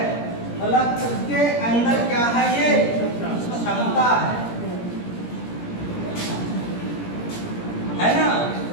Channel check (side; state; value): right; late; 17 ms